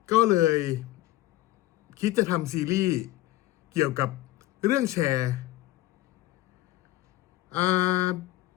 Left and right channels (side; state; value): right; quieter; 16.4 dB